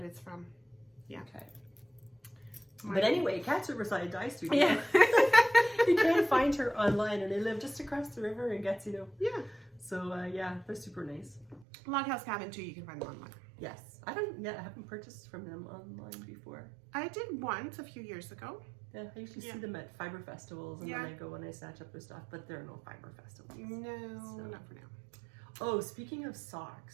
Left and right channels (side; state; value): left; drops out; at 11.7 s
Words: it's from. Yeah. Okay. But anyway, Cat's Riverside Dye Studio. Yeah. You can find her online, and they live just across the river in Gatineau. Yeah. So yeah, they're super nice. Log House Cabin too. You can find them online. Yes, I haven't purchased from them online before. I did once a few years ago. Yeah, I usually see them at fiber festivals, and then I go and I snatch up their stuff. But there are no fiber festivals. No, not for now. Oh, speaking of